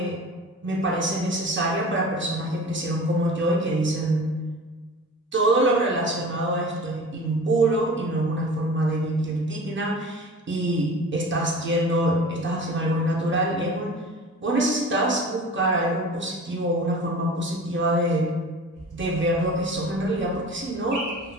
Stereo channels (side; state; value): both; normal; correlation 0.39